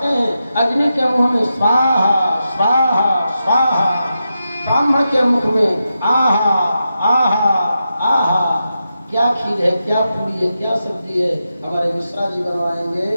हैं। अग्नि के मुख में स्वाहा स्वाहा स्वाहा, ब्राह्मण के मुख में आहा आहा आहा। क्या खीर है, क्या पूरी है, क्या सब्जी है, हमारे मिश्रा जी बनवाएंगे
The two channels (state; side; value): inverted; both; correlation -0.88